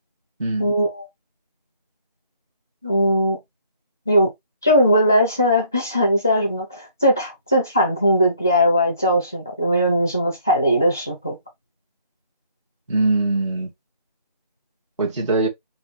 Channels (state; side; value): inverted; both; correlation -0.62